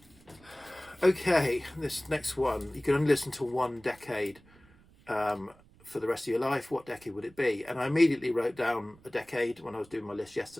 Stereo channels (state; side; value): noise; right; rumble, 27 dB below the sound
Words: Okay, this next one, you can only listen to 1 decade for the rest of your life. What decade would it be? And I immediately wrote down a decade when I was doing my list